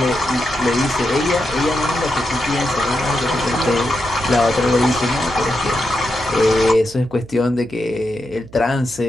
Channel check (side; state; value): right; noise; hum, 21 dB below the sound